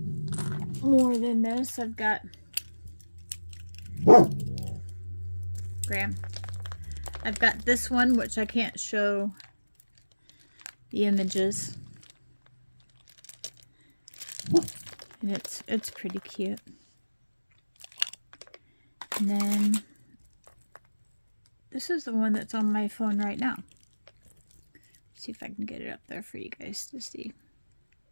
more than this. I've got Graham. I've got this one, which I can't show the images, and it's pretty cute. And then this is the one that's on my phone right now. Let's see if I can get it up there for you guys to see.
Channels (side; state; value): both; inverted; correlation -1.00